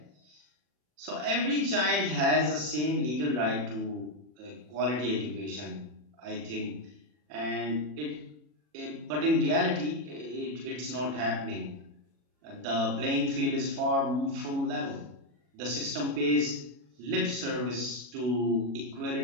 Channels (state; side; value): late; left; 40 ms